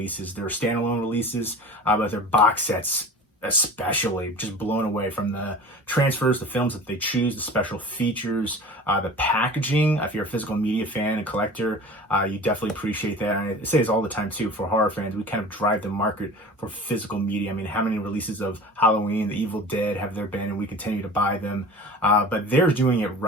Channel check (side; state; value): both; normal; correlation 0.38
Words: Their standalone releases, but their box sets especially, just blown away from the transfers, the films that they choose, the special features, the packaging. If you're a physical media fan and collector, you definitely appreciate that. And I say this all the time too, for horror fans, we kind of drive the market for physical media. I mean, how many releases of Halloween, The Evil Dead have there been, and we continue to buy them, but they're doing it